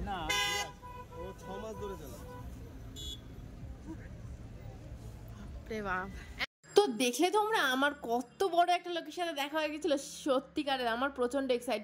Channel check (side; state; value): both; identical; correlation 1.00